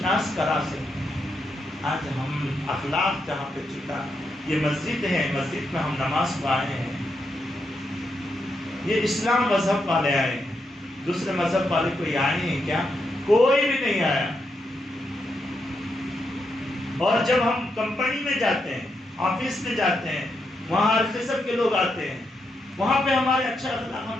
کرا سکتے ہیں. آج ہم اخلاق جہاں پہ چھوٹا، یہ مسجد ہے، مسجد میں ہم نماز کو آئے ہیں، یہ اسلام مذہب والے آئے ہیں، دوسرے مذہب والے کوئی آئے ہیں کیا؟ کوئی بھی نہیں آیا. اور جب ہم کمپنی میں جاتے ہیں، آفس میں جاتے ہیں، وہاں ہر قسم کے لوگ آتے ہیں، وہاں پہ ہمارے اچھا اخلاق ہم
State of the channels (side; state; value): both; normal; correlation 0.82